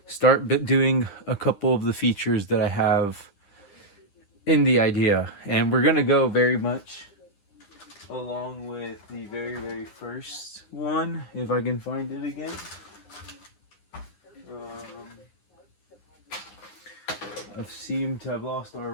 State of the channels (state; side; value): late; right; 9.8 ms